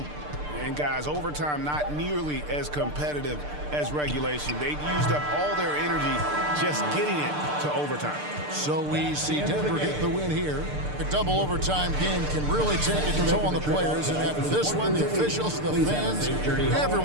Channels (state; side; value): late; left; 6.7 ms